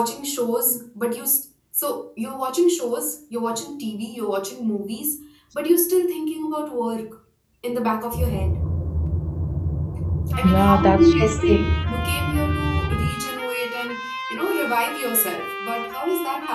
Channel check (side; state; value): both; identical; correlation 1.00